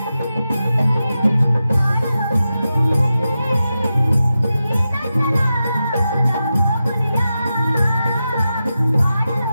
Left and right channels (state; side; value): inverted; both; correlation -0.91